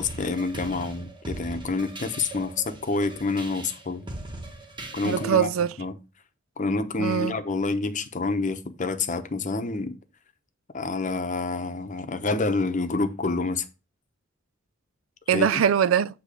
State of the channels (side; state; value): both; normal; correlation 0.19